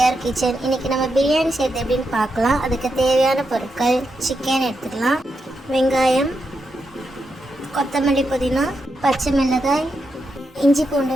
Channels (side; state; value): both; normal; correlation 0.85